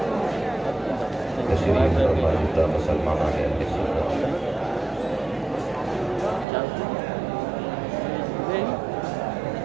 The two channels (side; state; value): left; drops out; at 6.5 s